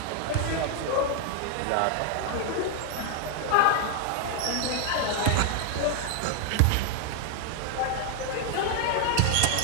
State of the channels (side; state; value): both; different; correlation 0.00